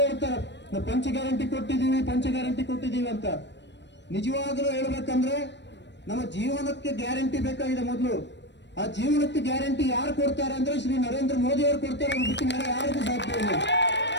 ಹೇಳ್ತಾರೆ, ನಾವು ಪಂಚ ಗ್ಯಾರಂಟಿ ಕೊಟ್ಟಿದ್ದೀವಿ ಅಂತ. ನಿಜವಾಗ್ಲೂ ಹೇಳ್ಬೇಕಂದ್ರೆ ನಮ್ಮ ಜೀವನಕ್ಕೆ ಗ್ಯಾರಂಟಿ ಬೇಕಾಗಿದೆ. ಮೊದಲು ಆ ಜೀವನಕ್ಕೆ ಗ್ಯಾರಂಟಿ ಯಾರು ಕೊಡ್ತಾರೆ ಅಂದ್ರೆ ಶ್ರೀ ನರೇಂದ್ರ ಮೋದಿ ಅವರು ಕೊಡ್ತಾರೆ, ಅವ್ರು ಬಿಟ್ಟು ಬೇರೆ ಯಾರಿಗೂ ಸಾಧ್ಯ ಇಲ್ಲ.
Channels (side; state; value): right; late; 0.51 ms